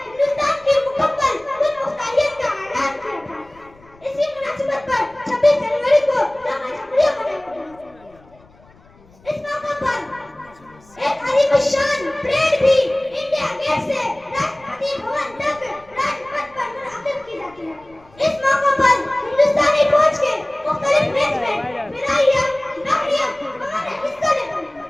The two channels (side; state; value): left; noise; rumble, 28 dB below the sound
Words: हिंदुस्तान की मुकम्मल खुद मुख्तारियत का ऐलान किया था। इसी मुनासिबत पर 26 जनवरी को जमा जमहूरियत मनाया गया। इस मौके पर एक आलिशान परेड भी इंडिया गेट से राष्ट्रपति भवन तक राजपथ पर मुनअक्किद की जाती है। इस मौके पर हिंदुस्तानी फौज के मुख्तलिफ रेजिमेंट, फिदाइया, बहरिया हमारे हिस्सा लेते हैं।